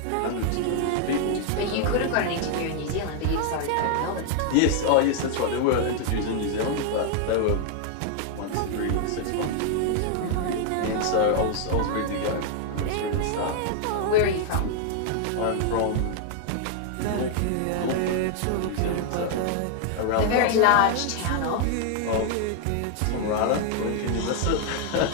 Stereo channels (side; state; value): both; different; correlation 0.00